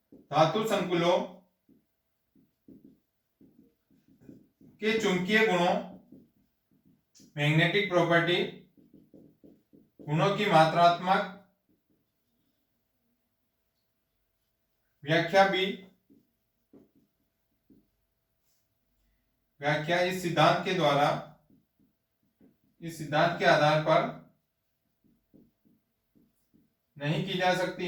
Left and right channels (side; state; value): both; identical; correlation 1.00